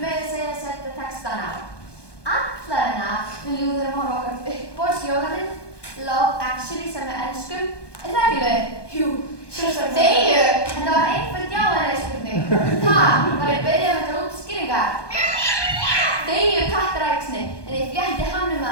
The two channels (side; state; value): right; late; 1.2 ms